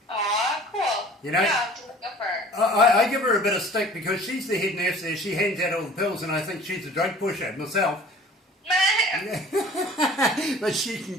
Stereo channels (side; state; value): both; normal; correlation 0.47